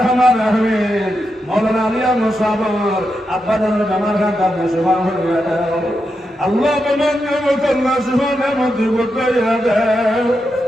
রহিম মাওলানা আলী আহমদ সাহেব আব্বা জানের বেমার খান তার সুবহান হইয়া দাও আল্লাহ বেমান নিয়ামত আল্লাহ সুবহান নিয়ামত দিবতাইয়া দাও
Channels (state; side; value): normal; both; correlation 0.86